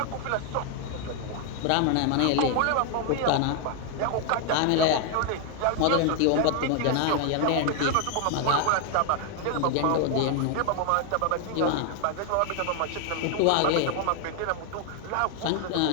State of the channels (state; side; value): different; both; correlation 0.00